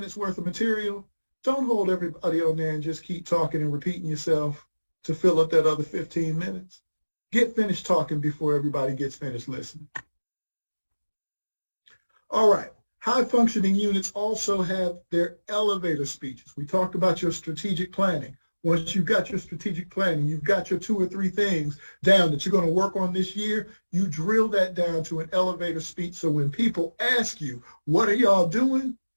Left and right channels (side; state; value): both; inverted; correlation -1.00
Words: worth of material, don't hold everybody on there and just keep talking and repeating yourself to fill up that other 15 minutes. Get finished talking before everybody gets finished listening. All right. High functioning units also have their elevator speeches. We talked about your strategic planning. Once you've got your strategic planning, you've got your 2 or 3 things down that you're going to work on this year, you drill that down to an elevator speech. So when people ask you, what are y'all doing?